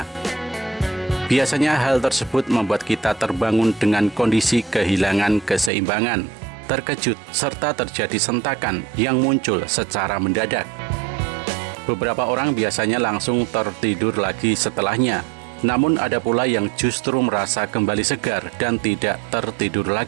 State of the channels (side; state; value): left; drops out; at 5.7 s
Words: Biasanya hal tersebut membuat kita terbangun dengan kondisi kehilangan keseimbangan, terkejut, serta terjadi sentakan yang muncul secara mendadak. Beberapa orang biasanya langsung tertidur lagi setelahnya. Namun ada pula yang justru merasa kembali segar dan tidak tertidur